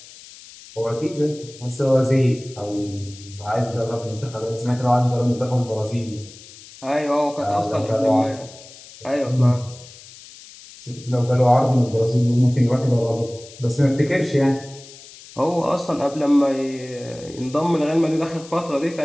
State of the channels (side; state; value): left; noise; hiss, 19 dB below the sound